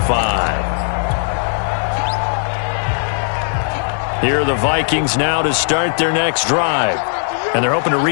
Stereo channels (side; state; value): right; silent; digital silence